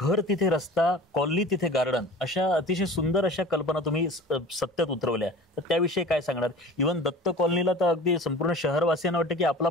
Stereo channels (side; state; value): both; normal; correlation 0.41